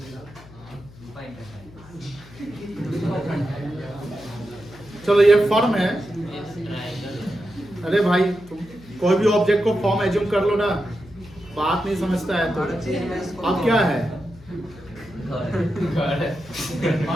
चलो ये फर्म है। अरे भाई तुम कोई भी ऑब्जेक्ट को फॉर्म एज्यूम कर लो ना, बात नहीं समझता है तो। अब क्या है?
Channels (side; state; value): left; noise; hum, 21 dB below the sound